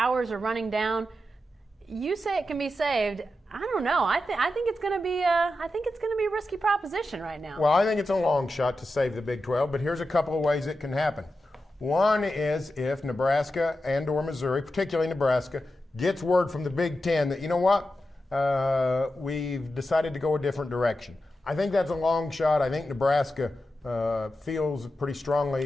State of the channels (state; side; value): normal; both; correlation 0.90